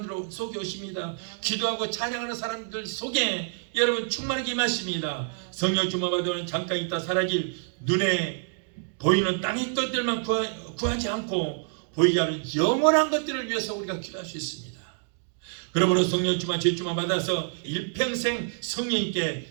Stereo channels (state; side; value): silent; left; digital silence